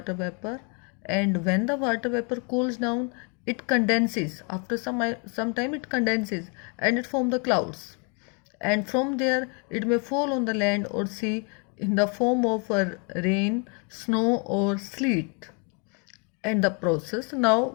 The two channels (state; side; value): quieter; right; 35.9 dB